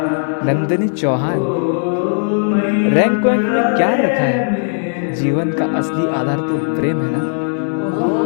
Nandini Chauhan, rank वैंक में क्या रखा है? जीवन का असली आधार तो प्रेम है ना।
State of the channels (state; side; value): silent; right; 63 dB below the other